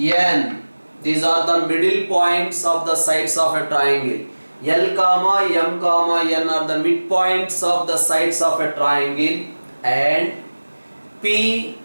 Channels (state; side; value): inverted; both; correlation -1.00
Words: These are the middle points of the sides of a triangle. L, comma, M, comma, N are the midpoints of the sides of a triangle. And P,